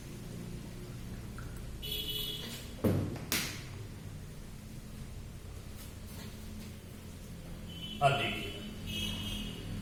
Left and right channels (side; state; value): both; identical; correlation 1.00